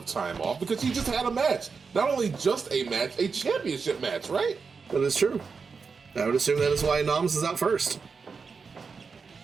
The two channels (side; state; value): left; quieter; 5.2 dB